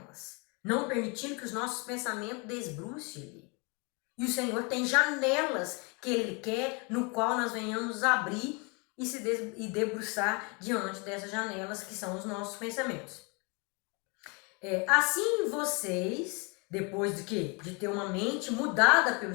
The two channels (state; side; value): quieter; right; 31.5 dB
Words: não permitindo que os nossos pensamentos desbrucem. E o Senhor tem janelas que Ele quer, no qual nós venhamos abrir e debruçar diante dessas janelas que são os nossos pensamentos. Assim vocês, depois de quê? De ter uma mente mudada pelo